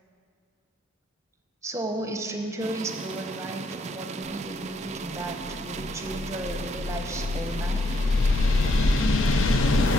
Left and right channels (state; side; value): normal; both; correlation 0.73